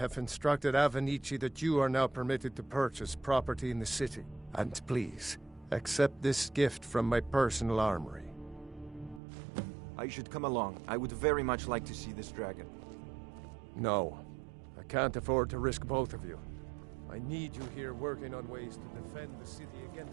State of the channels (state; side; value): drops out; left; at 9.2 s